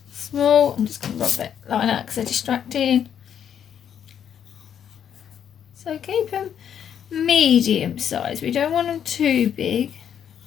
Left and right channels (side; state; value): right; quieter; 8.8 dB